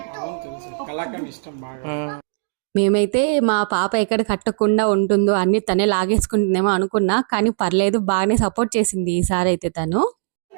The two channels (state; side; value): silent; left; digital silence